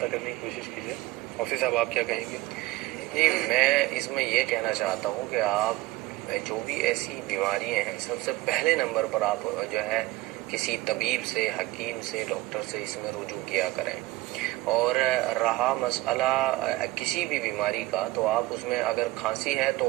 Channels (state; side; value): quieter; left; 19.3 dB